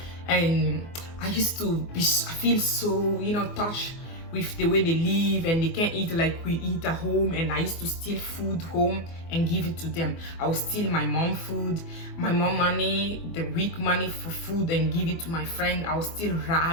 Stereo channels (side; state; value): right; late; 24 ms